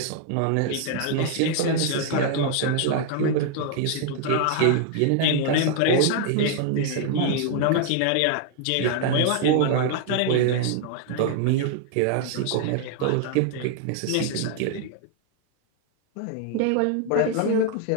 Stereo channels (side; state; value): both; different; correlation 0.00